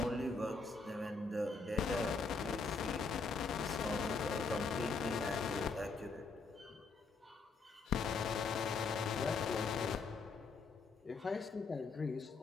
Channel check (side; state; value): right; quieter; 4.6 dB